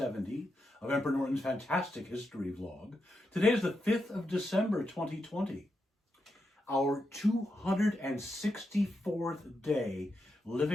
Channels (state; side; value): normal; both; correlation 0.85